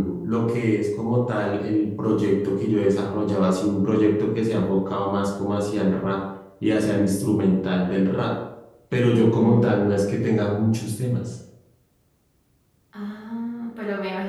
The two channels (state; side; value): identical; both; correlation 1.00